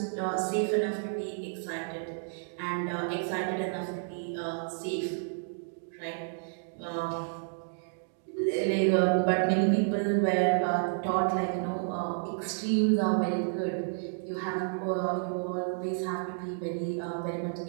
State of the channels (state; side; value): silent; left; digital silence